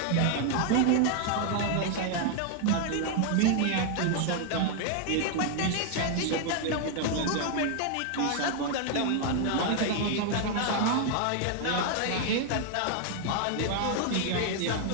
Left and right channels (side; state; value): both; different; correlation 0.00